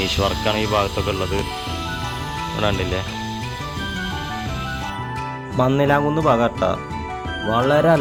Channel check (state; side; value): identical; both; correlation 1.00